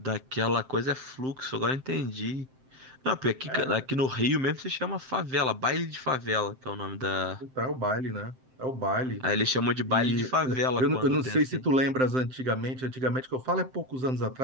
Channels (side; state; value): left; late; 7.7 ms